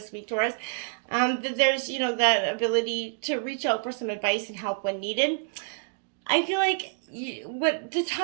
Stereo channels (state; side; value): silent; left; digital silence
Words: week, Taurus. That there's, that ability to reach out for some advice and help when needed. I feel like what the